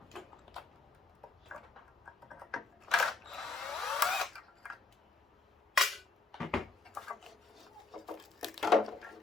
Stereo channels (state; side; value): quieter; right; 3.8 dB